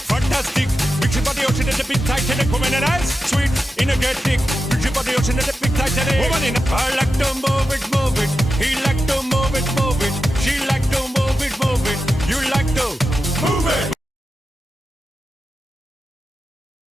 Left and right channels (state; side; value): normal; both; correlation 0.91